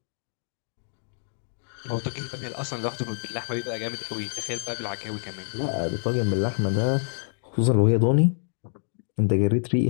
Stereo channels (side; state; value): right; silent; digital silence